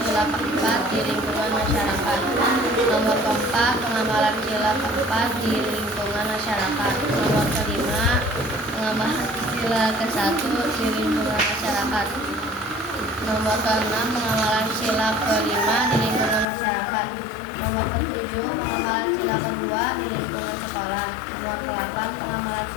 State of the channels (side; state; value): right; drops out; at 16.4 s